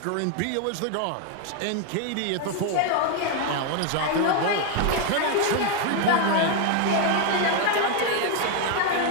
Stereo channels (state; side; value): different; both; correlation 0.01